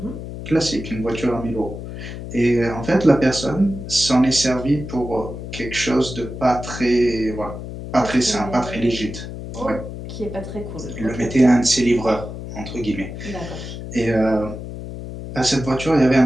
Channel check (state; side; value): noise; left; hum, 9 dB below the sound